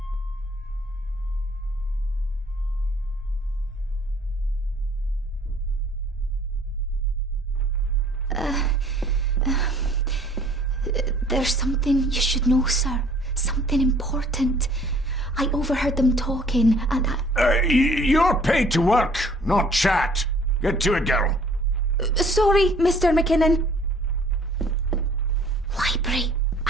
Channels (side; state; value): both; normal; correlation 0.56